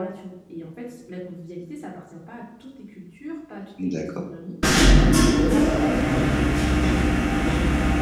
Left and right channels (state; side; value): identical; both; correlation 1.00